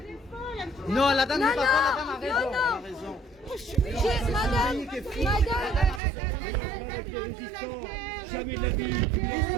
Non, la dame n'a pas raison. La dame a raison. Madame, Jamais de la vie, tu me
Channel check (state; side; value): drops out; left; at 6.0 s